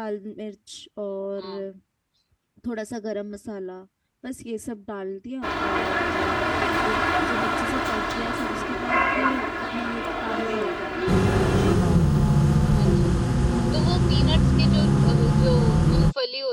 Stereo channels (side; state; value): both; identical; correlation 1.00